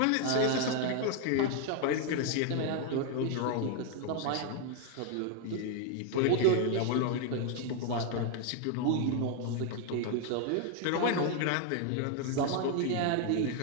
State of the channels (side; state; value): both; different; correlation 0.01